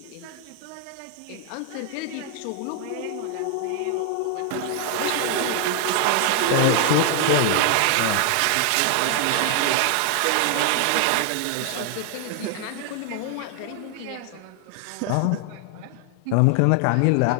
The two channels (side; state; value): both; different; correlation 0.00